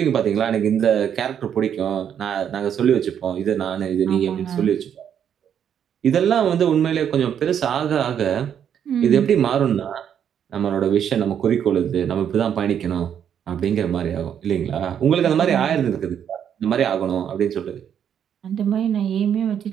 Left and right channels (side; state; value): left; quieter; 8.8 dB